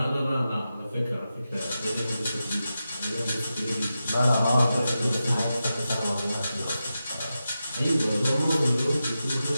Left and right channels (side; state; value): both; inverted; correlation -0.91